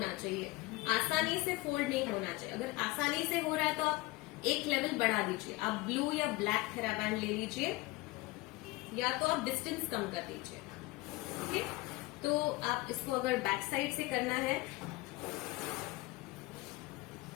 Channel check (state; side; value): quieter; right; 21.5 dB